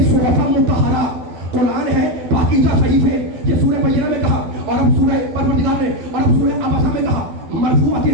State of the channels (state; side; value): late; left; 12 ms